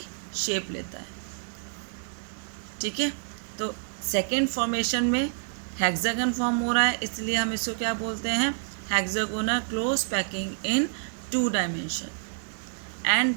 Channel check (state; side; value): silent; left; digital silence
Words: शेप लेता है। ठीक है, तो सेकेंड फॉर्मेशन में हेक्सागन फॉर्म हो रहा है, इसलिए हम इसको क्या बोलते हैं, hexagonal close packing in 2 dimension.